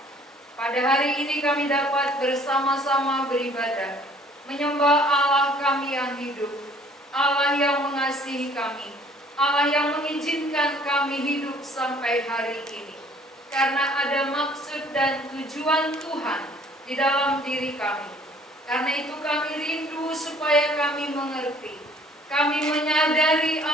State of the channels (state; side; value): normal; both; correlation 0.56